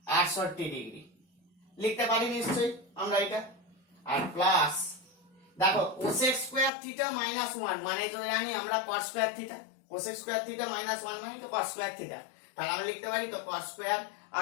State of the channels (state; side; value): drops out; right; at 6.7 s